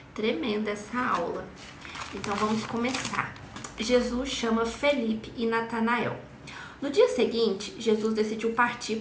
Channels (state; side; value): identical; both; correlation 1.00